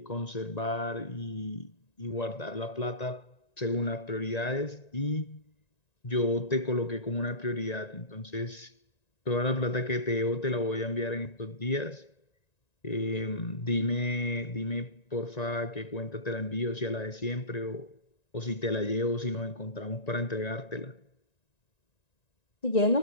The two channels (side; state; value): right; late; 1.9 ms